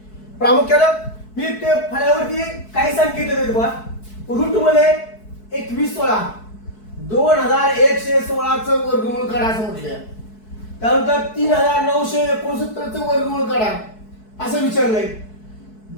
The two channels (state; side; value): late; right; 4.6 ms